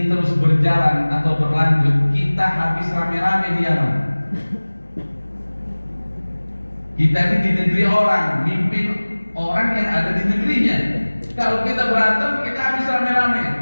terus berjalan atau berlanjut, kita habis rame-rame di Yaman. Kita ini di negeri orang, mimpin orang yang ada di negerinya. Kalau kita berantem, kita habis rame-rame.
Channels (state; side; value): inverted; both; correlation -1.00